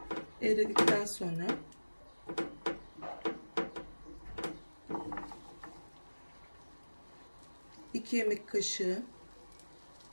eridikten sonra iki yemek kaşığı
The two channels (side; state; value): both; inverted; correlation -1.00